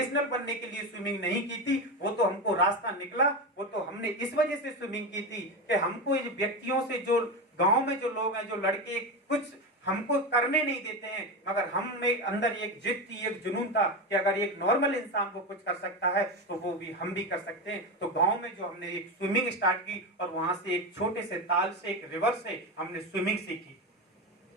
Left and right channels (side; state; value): both; normal; correlation 0.18